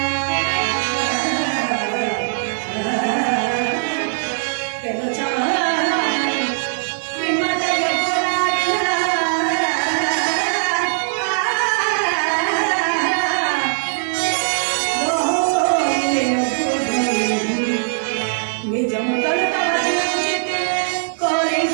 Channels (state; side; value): silent; left; 65 dB below the other